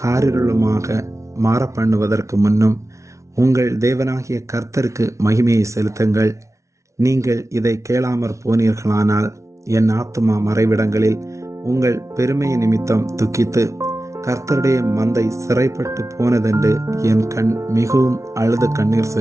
மாற பண்ணுவதற்கு முன்னும் உங்கள் தேவனாகிய கர்த்தருக்கு மகிமையை செலுத்துங்கள். நீங்கள் இதை கேளாமற் போனீர்களானால் என் ஆத்துமா மறைவிடங்களில் உங்கள் பெருமையை நிமித்தம் துக்கித்து கர்த்தருடைய மந்தை சிறைப்பட்டு போனதென்று என் கண் மிகவும் அழுது கண்ணீர்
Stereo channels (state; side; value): late; left; 0.14 ms